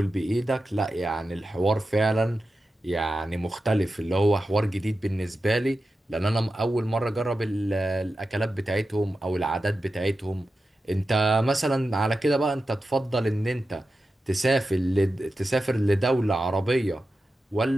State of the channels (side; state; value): both; normal; correlation 0.92